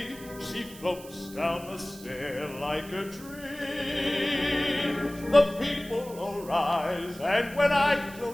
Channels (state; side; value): noise; right; hiss, 18 dB below the sound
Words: She floats down the stair like a dream. The people all rise, and when I